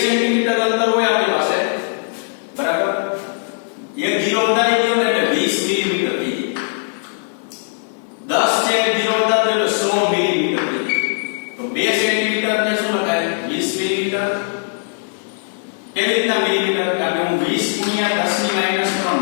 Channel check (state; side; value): silent; right; digital silence